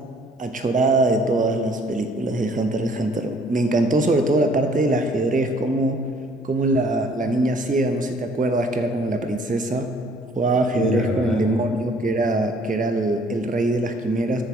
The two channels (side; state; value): both; normal; correlation 0.59